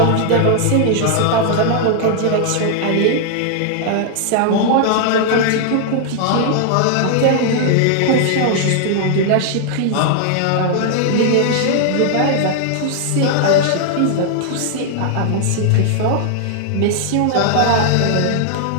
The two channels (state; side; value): different; both; correlation -0.01